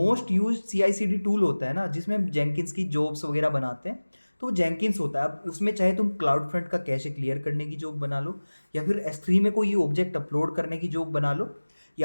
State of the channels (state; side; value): inverted; both; correlation -1.00